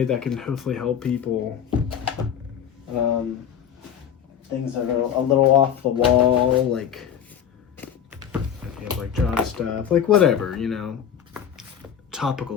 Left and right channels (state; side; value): quieter; right; 8.8 dB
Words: that can hopefully help people. Things that are a little off the wall, like like job stuff, like whatever,